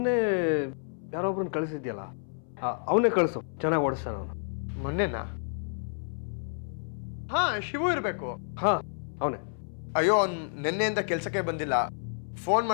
ಯಾರೊಬ್ರನ್ನ ಕಳಿಸಿದ್ಯಲ್ಲ, ಅವನೇ ಕಳಿಸು, ಚೆನ್ನಾಗಿ ಓಡಿಸ್ತಾನ ಅವನು. ಮೊನ್ನೆನಾ? ಹಾ, ಶಿವು ಇರಬೇಕು. ಹಾಂ, ಅವನೇ. ಅಯ್ಯೋ, ಅವ್ನು ನಿನ್ನೆಯಿಂದ ಕೆಲಸಕ್ಕೆ ಬಂದಿಲ್ಲ. ಫೋನ್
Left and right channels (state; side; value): silent; right; 58 dB below the other